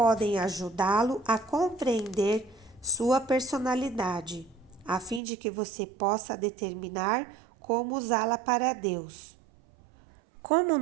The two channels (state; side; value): drops out; left; at 5.2 s